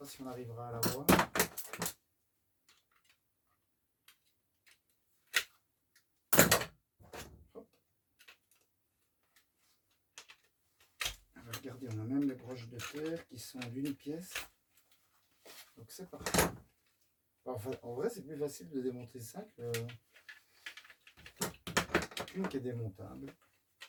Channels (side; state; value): both; identical; correlation 1.00